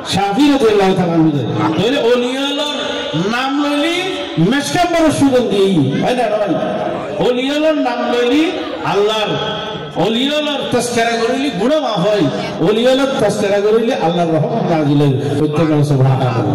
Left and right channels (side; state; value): both; identical; correlation 1.00